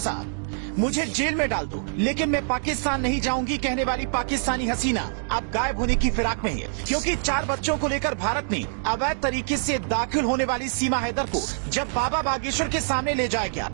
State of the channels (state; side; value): silent; left; digital silence